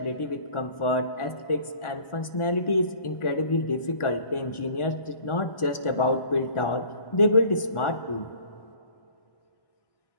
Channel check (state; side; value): late; right; 1.4 ms